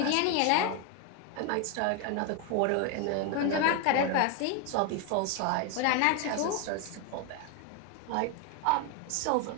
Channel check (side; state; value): both; different; correlation 0.01